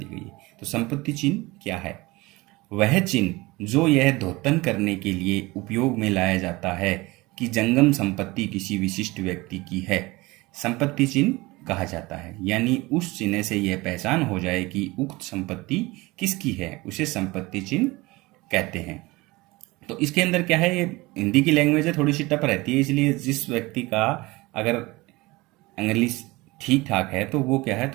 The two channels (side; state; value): left; quieter; 21.9 dB